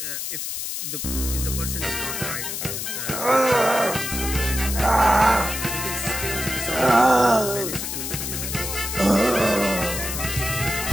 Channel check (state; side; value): noise; left; hiss, 4 dB below the sound